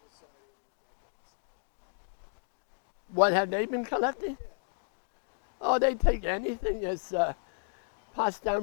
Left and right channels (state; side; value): silent; right; digital silence